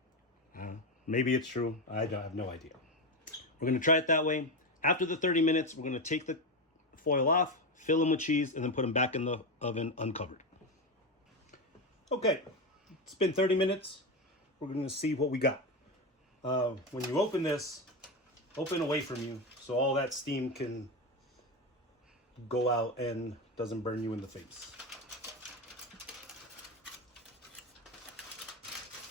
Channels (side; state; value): both; normal; correlation 0.15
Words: Maybe it's true. I have no idea. We're gonna try it that way. After the 30 minutes, we're gonna take the foil off, fill them with cheese, and then put them back in the oven uncovered. Okay, it's been 30 minutes. We're gonna see what we got. When you open this, open away from you so all that steam can go out and doesn't burn you in the face.